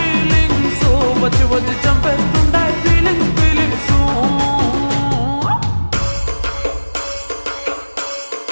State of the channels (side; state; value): both; inverted; correlation -1.00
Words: వచ్చి వచ్చి చంపేస్తుండాయి ఫీలింగ్స్ ఫీలింగ్స్